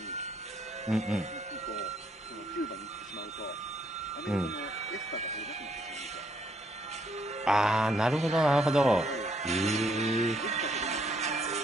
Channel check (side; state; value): both; normal; correlation 0.71